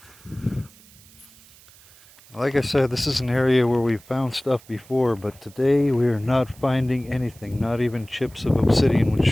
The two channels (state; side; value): noise; right; hiss, 25 dB below the sound